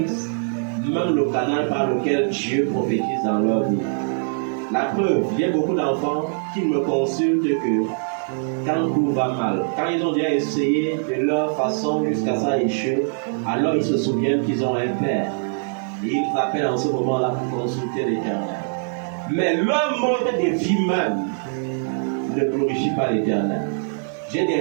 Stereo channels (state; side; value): silent; left; digital silence